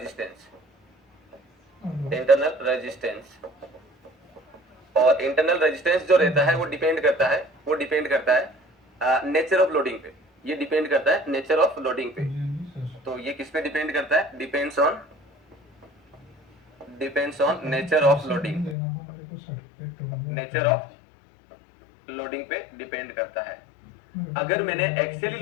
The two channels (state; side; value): drops out; right; at 18.8 s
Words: इंटरनल रेजिस्टेंस। और इंटरनल रेजिस्टेंस जो रहता है वो डिपेंड करता है नेचर ऑफ लोडिंग पे। ये डिपेंड करता है नेचर ऑफ लोडिंग पे। तो ये किस पे डिपेंड करता है? Depends on nature of loading, nature of loading पे डिपेंड करता है। अगर मैंने एक्सियली